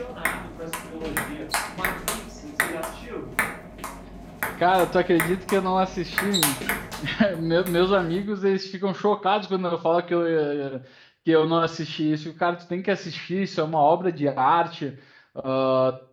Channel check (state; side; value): identical; both; correlation 1.00